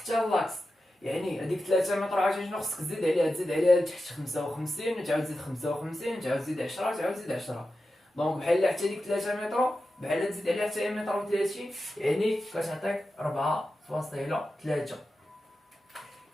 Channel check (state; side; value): normal; both; correlation 0.91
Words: لاكس، يعني هذيك 3 متر عاوتاني شنو خصك تزيد عليها لتحت 55 وتعاود تزيد 55 تعاود تزيد 10 تعاود تزيد 10. دونك بحال حتى ديك 3 متر بحال تزيد عليها حتى متر و30، يعني كتعطيك 4.3.